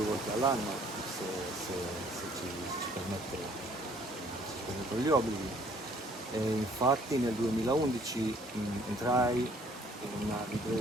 volte all'anno, se ci permettono gli obblighi. E infatti nel 2011 entrai in una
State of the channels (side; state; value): both; normal; correlation 0.60